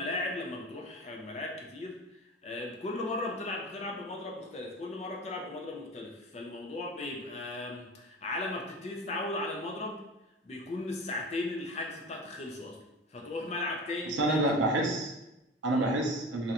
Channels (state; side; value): normal; both; correlation 0.33